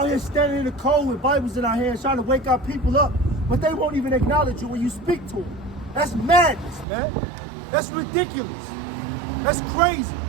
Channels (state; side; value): drops out; left; at 6.9 s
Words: here standing in the cold with Bibles in our hands trying to wake our people up, but they won't even acknowledge you when you speak to them. That's madness, man. That's ridiculous. That's crazy.